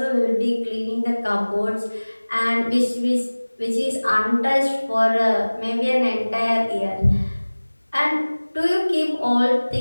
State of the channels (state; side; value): inverted; both; correlation -1.00